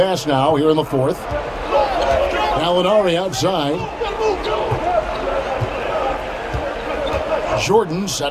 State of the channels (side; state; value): both; identical; correlation 1.00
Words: now here in the fourth. Alinari outside. Jordan